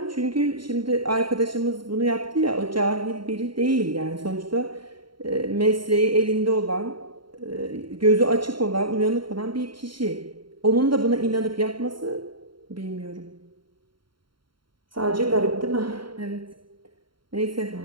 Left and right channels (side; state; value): left; late; 0.73 ms